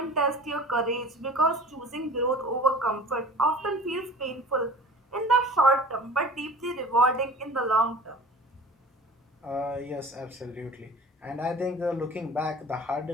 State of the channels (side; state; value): both; normal; correlation 0.42